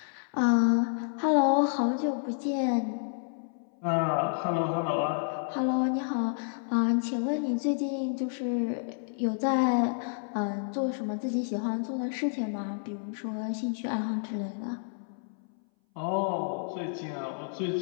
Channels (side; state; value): right; silent; 58 dB below the other